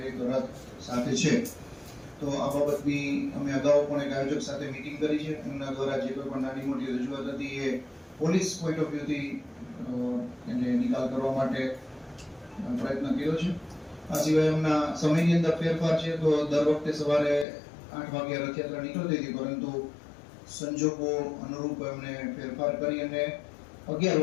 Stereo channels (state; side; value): drops out; right; at 17.4 s